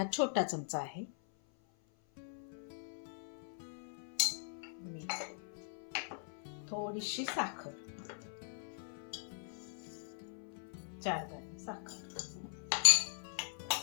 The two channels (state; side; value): silent; right; 51 dB below the other